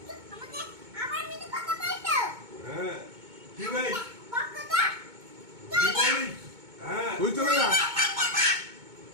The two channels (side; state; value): left; late; 2.2 ms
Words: হ্যাঁ কি ভাই কি বলিস হ্যাঁ তুই চলে যা